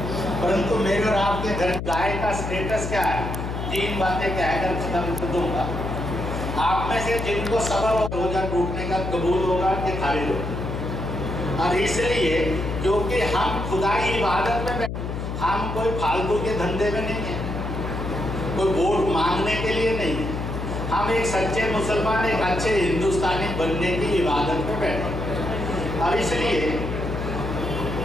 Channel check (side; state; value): left; noise; hum, 5 dB below the sound